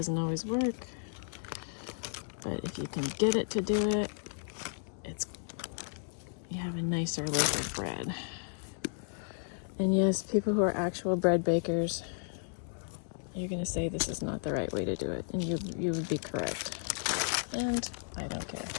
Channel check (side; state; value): right; silent; digital silence